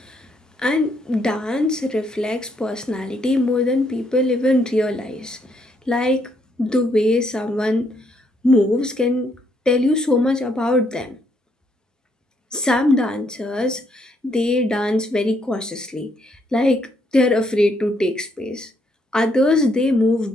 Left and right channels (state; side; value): normal; both; correlation 0.73